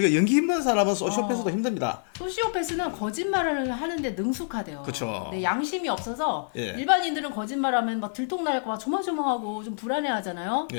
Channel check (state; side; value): silent; right; 60 dB below the other